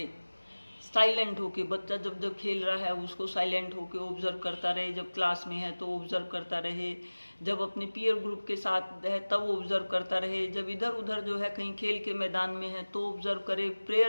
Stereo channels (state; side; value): inverted; both; correlation -1.00